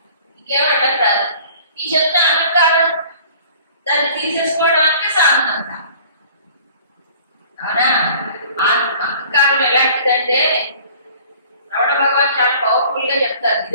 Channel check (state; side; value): inverted; both; correlation -0.50